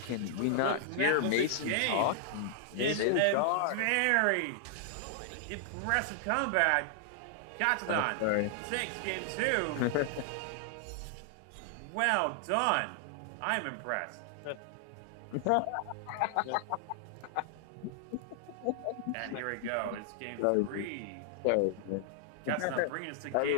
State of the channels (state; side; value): different; both; correlation 0.00